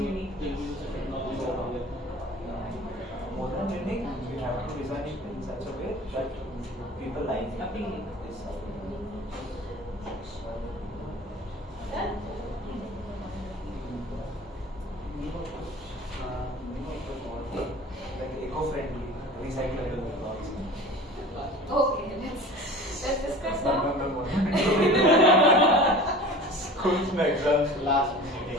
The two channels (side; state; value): both; normal; correlation 0.40